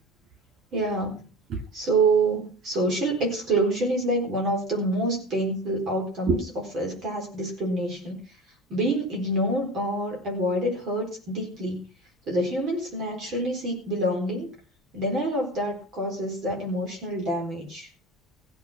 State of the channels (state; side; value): normal; both; correlation 0.31